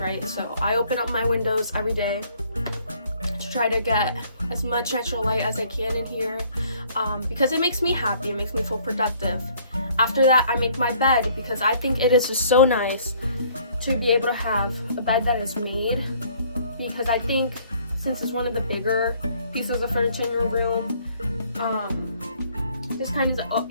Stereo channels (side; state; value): both; inverted; correlation -0.60